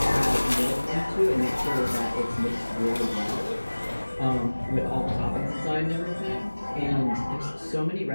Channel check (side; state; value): both; inverted; correlation -1.00